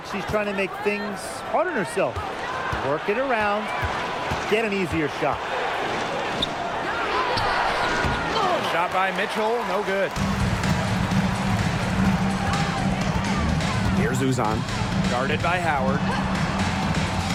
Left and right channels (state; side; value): identical; both; correlation 1.00